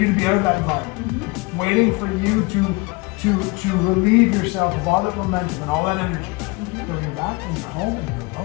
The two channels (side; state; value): right; quieter; 26.1 dB